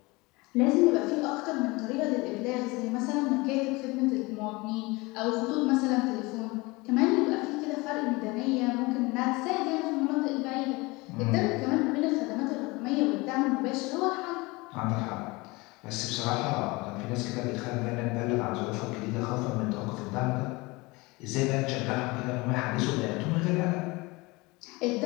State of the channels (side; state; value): right; quieter; 24.0 dB